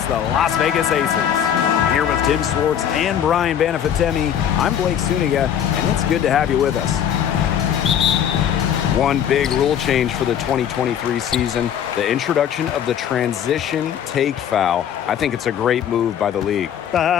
the Las Vegas Aces. Here with Tim Swartz and Brian Banafitemi, I'm Blake Suniga, and it's good to have you with us. One big rule change for the 2023 season, the introduction of the transition take foul. I think it's a great move by the league.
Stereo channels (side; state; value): right; quieter; 9.3 dB